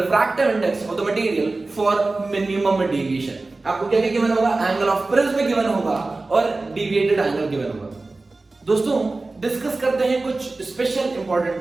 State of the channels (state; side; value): quieter; left; 3.3 dB